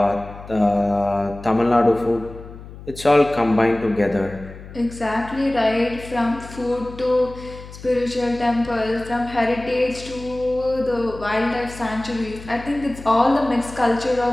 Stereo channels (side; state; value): left; noise; hum, 15 dB below the sound